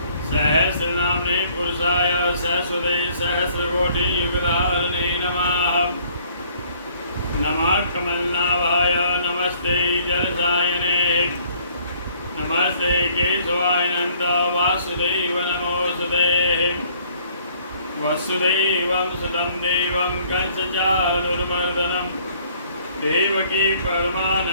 सहस्रनाम्ने पुरुषाय सहस्रते सहस्रकोटियुगधारिणे नमः। नमः कमलनाभाय नमस्ते जलसायने नमस्ते केशवाय नन्द वासुदेव नमोऽस्तुते। वसुदेवं सुतं देवं कंसचाणूरमर्दनं देवकी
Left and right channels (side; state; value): both; inverted; correlation -0.60